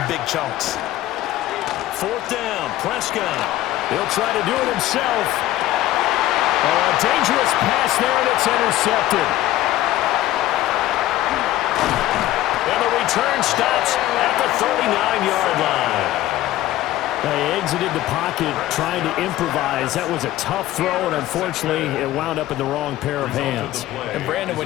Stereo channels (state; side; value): quieter; right; 14.9 dB